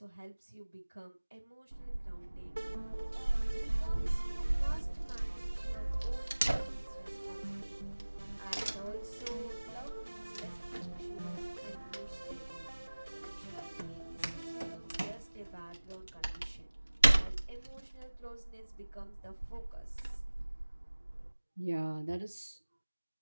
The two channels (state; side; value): inverted; both; correlation -1.00